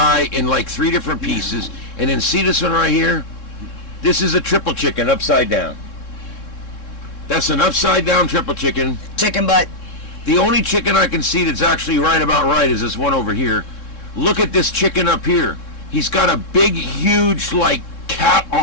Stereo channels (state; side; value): late; right; 3.7 ms